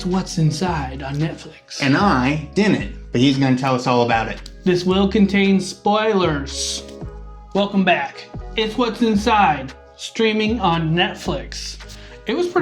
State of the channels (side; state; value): both; identical; correlation 1.00